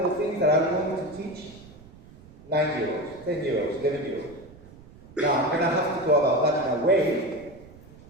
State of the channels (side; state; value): right; noise; rumble, 21 dB below the sound